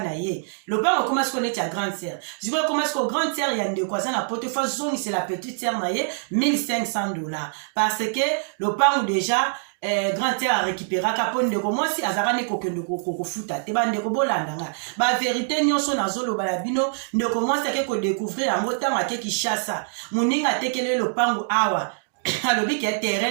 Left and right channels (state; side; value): silent; left; digital silence